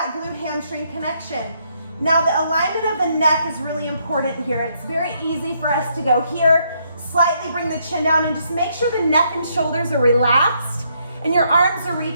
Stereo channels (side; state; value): both; inverted; correlation -0.74